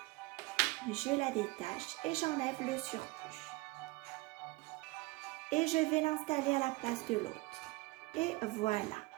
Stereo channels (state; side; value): quieter; left; 22.6 dB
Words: Je la détache et j'enlève le surplus. Et je vais l'installer à la place de l'autre. Et voilà.